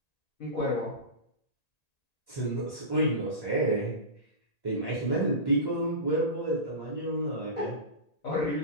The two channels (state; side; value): late; right; 1.8 ms